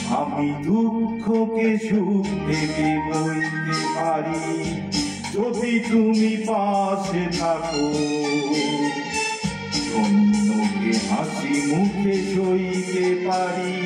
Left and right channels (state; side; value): identical; both; correlation 1.00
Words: আমি দুঃখকে সুখ ভেবে বইতে পারি যদি তুমি পাশে থাকো। অন্যকে হাসি মুখে সইতে পারি